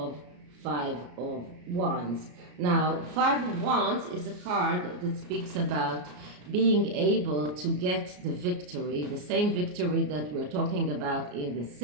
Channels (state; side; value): late; left; 34 ms